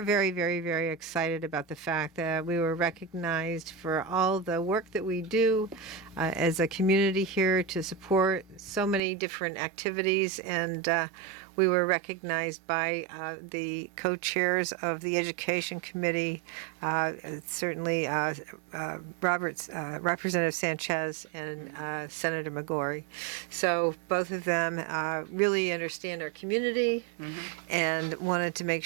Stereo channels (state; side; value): drops out; left; at 9.0 s